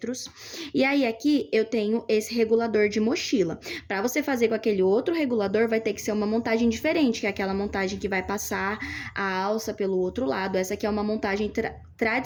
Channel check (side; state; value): both; identical; correlation 1.00